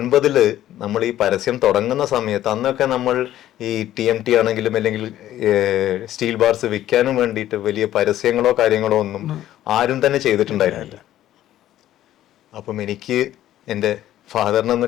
നമ്മൾ ഈ പരസ്യം തുടങ്ങുന്ന സമയത്ത് അന്നൊക്കെ നമ്മൾ ഈ TMT ആണെങ്കിലും അല്ലെങ്കിൽ സ്റ്റീൽ ബാർസ് വിൽക്കാനും വേണ്ടിയിട്ട് വലിയ പരസ്യങ്ങളോ കാര്യങ്ങളോ ഒന്നും ആരും തന്നെ ചെയ്തിട്ടുണ്ടായിരുന്നില്ല. അപ്പം എനിക്ക് എൻ്റെ ഫാദറിനെ ഒന്ന്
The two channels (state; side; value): quieter; right; 12.9 dB